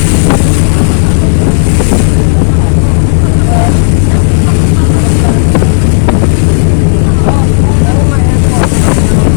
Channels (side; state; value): right; silent; digital silence